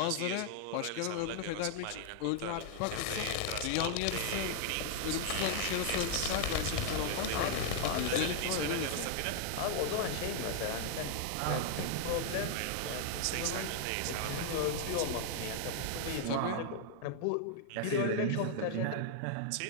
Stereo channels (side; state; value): both; different; correlation 0.00